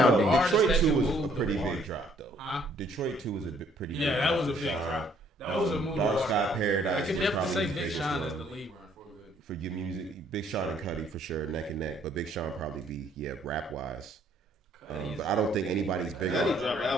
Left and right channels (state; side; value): normal; both; correlation 0.64